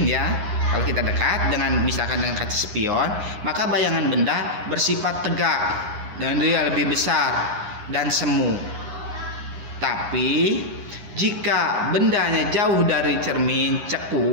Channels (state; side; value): late; left; 9.8 ms